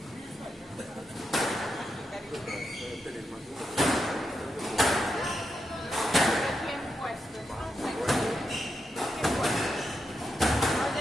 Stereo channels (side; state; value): both; normal; correlation 0.85